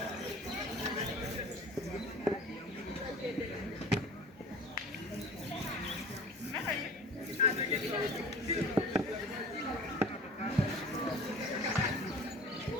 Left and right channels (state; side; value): normal; both; correlation 0.41